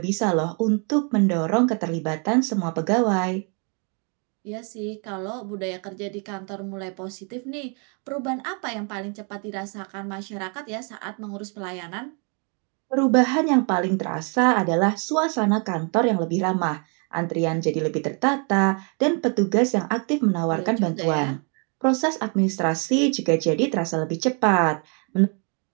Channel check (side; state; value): left; quieter; 37.4 dB